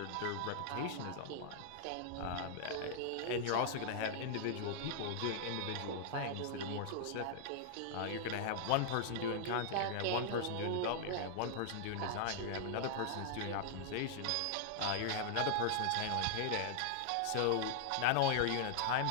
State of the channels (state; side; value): different; both; correlation -0.01